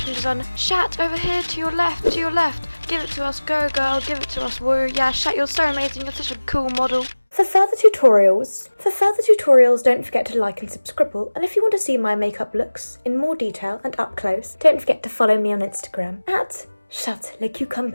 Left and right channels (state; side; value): inverted; both; correlation -1.00